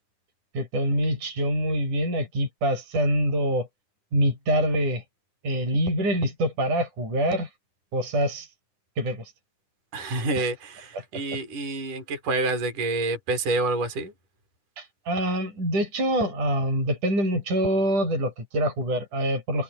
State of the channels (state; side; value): late; left; 9.8 ms